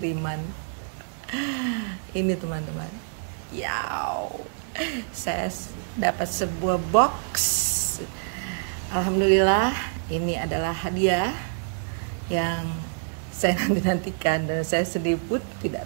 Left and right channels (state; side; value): silent; left; 61 dB below the other